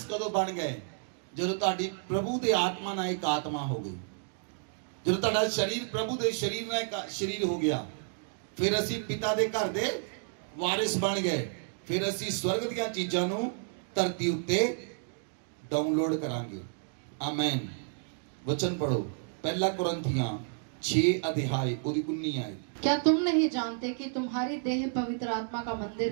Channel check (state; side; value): silent; left; digital silence